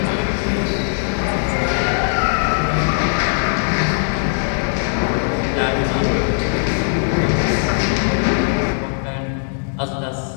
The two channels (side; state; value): right; silent; digital silence